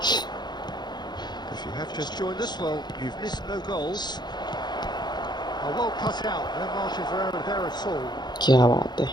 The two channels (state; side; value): late; right; 0.21 ms